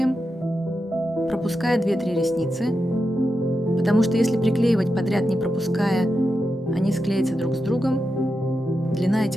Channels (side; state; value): both; normal; correlation 0.89